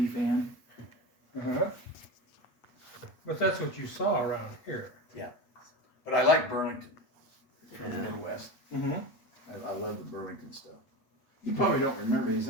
fan. Uh-huh. But that's what you saw around here. Yeah. But I like Burlington from the Yeah. Midwest. Mm-hmm. I love the Burlington stuff. You probably don't remember these,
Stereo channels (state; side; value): late; right; 8.3 ms